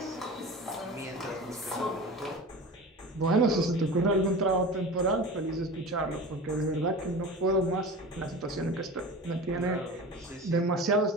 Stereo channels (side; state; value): both; normal; correlation 0.33